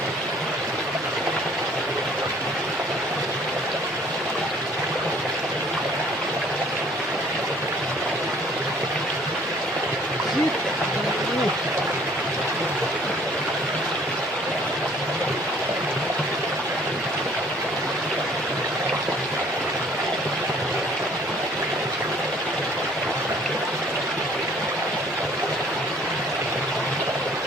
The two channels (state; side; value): normal; both; correlation 0.57